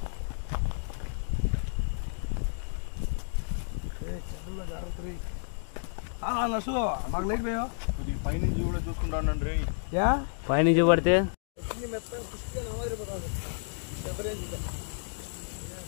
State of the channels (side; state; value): right; silent; digital silence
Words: నర్సు మాకు లైట్ పోయా కొద్దిగా పైనుంచి కూడా చూసుకుంటాను రే పైనుంచి పడితే